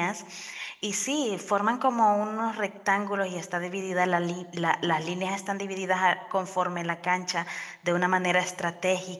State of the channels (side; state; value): both; identical; correlation 1.00